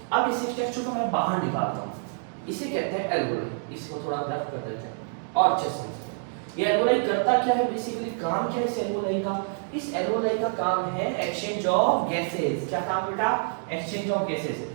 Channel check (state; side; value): silent; left; 60 dB below the other